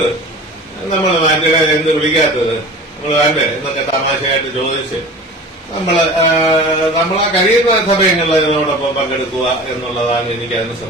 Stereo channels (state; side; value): normal; both; correlation 0.38